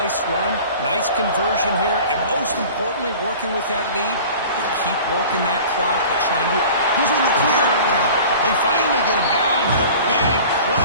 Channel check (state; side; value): inverted; both; correlation -0.42